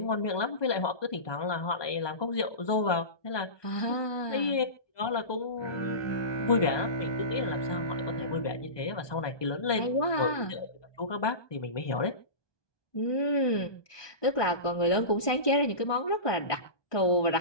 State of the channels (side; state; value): right; late; 1.2 ms